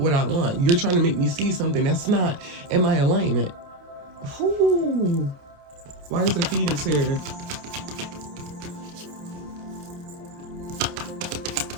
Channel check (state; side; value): late; left; 28 ms